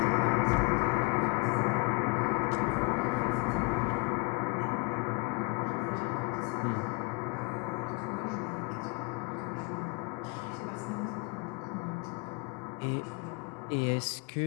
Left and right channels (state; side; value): quieter; right; 29.2 dB